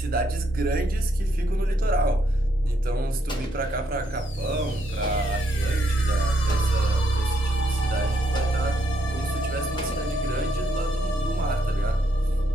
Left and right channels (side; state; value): both; normal; correlation 0.75